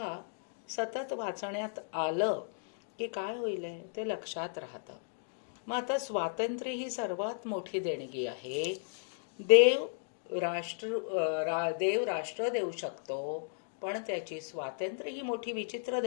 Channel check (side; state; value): right; silent; digital silence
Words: सतत वाचण्यात आलं की काय होईल ते लक्षात राहतं. मग आता स्वातंत्र्य ही सर्वात मोठी देणगी आहे. देव राष्ट्र देऊ शकतो, पण त्याची स्वातंत्र्य ही मोठी विचित्र